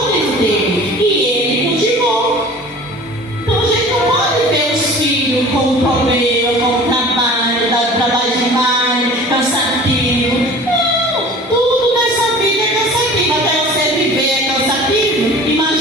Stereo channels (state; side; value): normal; both; correlation 0.43